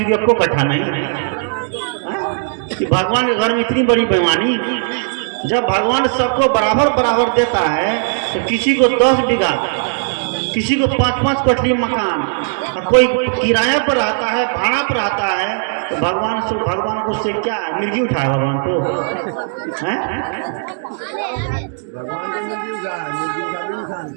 को 1 कट्ठा नहीं, कि भगवान के घर में इतनी बड़ी बेईमानी। जब भगवान सबको बराबर बराबर देता है, तो किसी को 10 बीघा, किसी को 5-5 कोठली मकान, और कोई किराया पर रहता है, भाड़ा पर रहता है, तो भगवान को उससे क्या मिर्गी उठाए भगवान को?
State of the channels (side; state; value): left; silent; digital silence